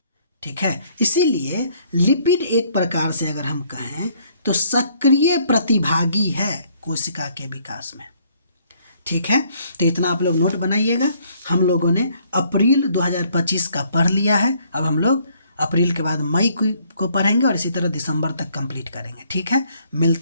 ठीक है, इसीलिए लिपिड एक प्रकार से अगर हम कहें तो सक्रिय प्रतिभागी है कोशिका के विकास में। ठीक है, तो इतना आप लोग नोट बनाइएगा। हम लोगों ने अप्रैल 2025 का पढ़ लिया है। अब हम लोग अप्रैल के बाद मई को पढ़ेंगे और इसी तरह दिसंबर तक कंप्लीट करेंगे। ठीक है,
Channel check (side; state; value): both; inverted; correlation -0.65